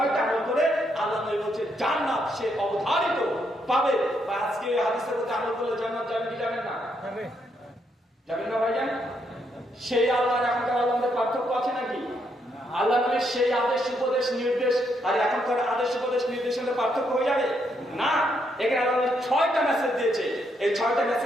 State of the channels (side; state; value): both; normal; correlation 0.76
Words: আমল করে আল্লাহ নবী বলছে জান্নাত সে অবধারিত পাবে। বা আজকে হাদিসের মধ্যে আমল করলে জান্নাত যাবেন কি যাবেন না? যাবেন না ভাইজান? সেই আল্লাহর এখনকার আল্লাহদের পার্থক্য আছে নাকি? আল্লাহ নবীর সেই আদেশ উপদেশ নির্দেশ আর এখনকার আদেশ উপদেশ নির্দেশের পার্থক্য হয়ে যাবে না। এখানে আল্লাহ 6টা মেসেজ দিয়েছে। এই 6টা